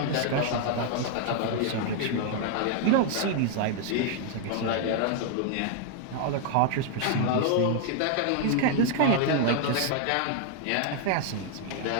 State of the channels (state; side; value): different; both; correlation 0.00